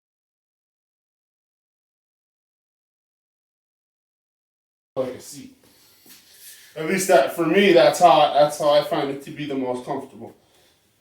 seat. At least that for me, that's how I find it to be the most comfortable.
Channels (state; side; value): identical; both; correlation 1.00